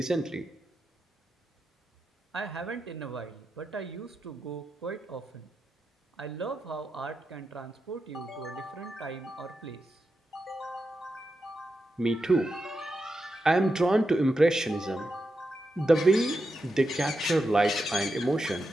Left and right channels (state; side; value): normal; both; correlation 0.88